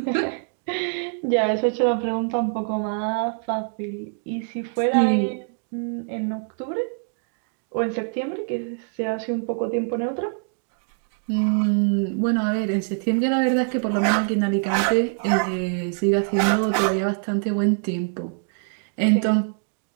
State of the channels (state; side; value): silent; left; 62 dB below the other